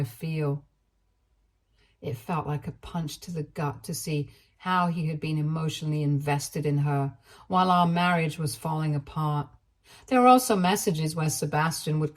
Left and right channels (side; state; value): both; identical; correlation 1.00